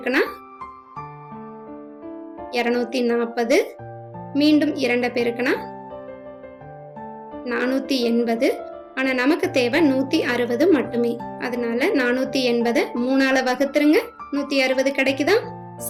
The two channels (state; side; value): identical; both; correlation 1.00